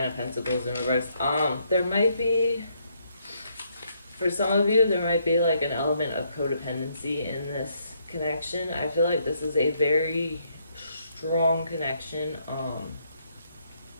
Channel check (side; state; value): both; inverted; correlation -0.73